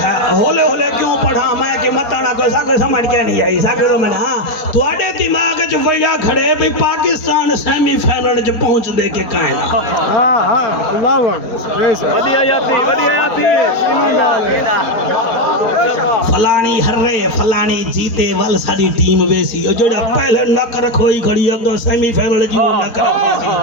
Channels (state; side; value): late; right; 4.4 ms